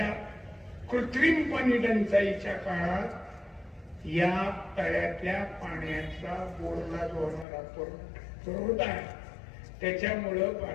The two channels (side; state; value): right; drops out; at 7.5 s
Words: कृत्रिम पाणी टंचाईच्या काळात या तळ्यातल्या पाण्याचा बोरला जो होणारा पुरवठा आहे त्याच्यामुळं